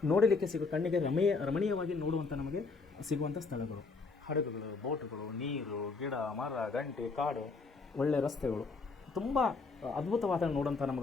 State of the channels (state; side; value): quieter; right; 4.3 dB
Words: ನೋಡಲಿಕ್ಕೆ ಕಣ್ಣಿಗೆ ರಮಣೀಯವಾಗಿ ನೋಡುವಂಥ ನಮಗೆ ಸಿಗುವಂಥ ಸ್ಥಳಗಳು, ಹಡಗುಗಳು, ಬೋಟುಗಳು, ನೀರು, ಗಿಡ, ಮರ, ಗಂಟೆ, ಕಾಡು, ಒಳ್ಳೆಯ ರಸ್ತೆಗಳು, ತುಂಬ ಅದ್ಭುತವಾದ ನೋಡುವಂಥ